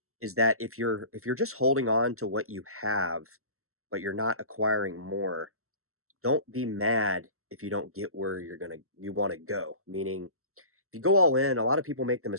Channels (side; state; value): left; late; 0.63 ms